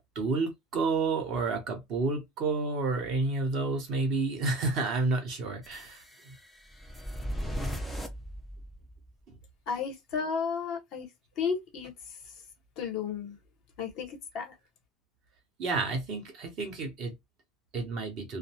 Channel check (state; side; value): normal; both; correlation 0.39